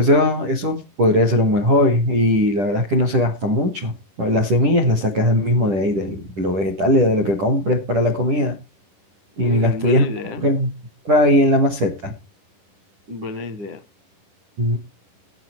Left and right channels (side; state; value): left; late; 10 ms